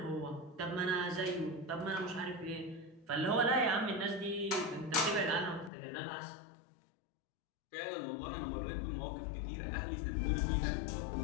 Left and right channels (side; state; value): right; drops out; at 5.7 s